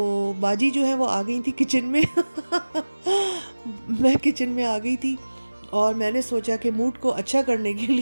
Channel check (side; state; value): both; inverted; correlation -1.00